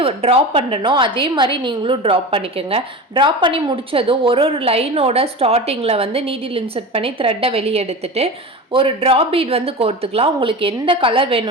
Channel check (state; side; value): normal; both; correlation 0.29